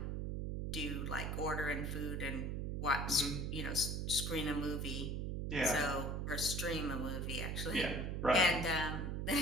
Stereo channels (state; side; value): noise; right; hum, 1 dB below the sound